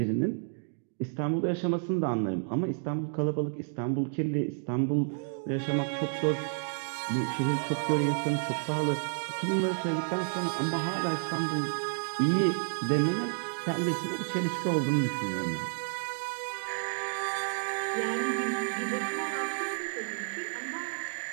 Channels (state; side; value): silent; left; digital silence